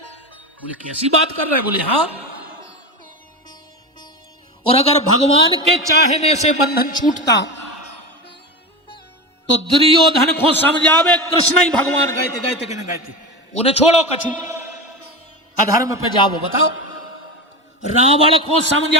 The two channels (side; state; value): both; normal; correlation 0.22